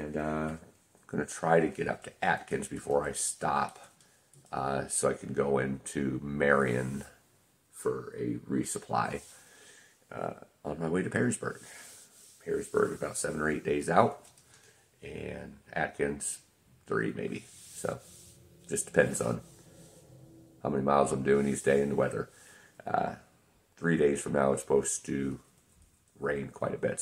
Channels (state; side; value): identical; both; correlation 1.00